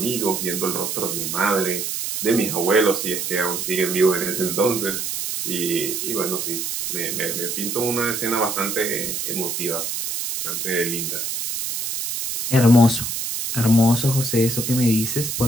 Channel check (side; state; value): right; noise; hiss, 3 dB below the sound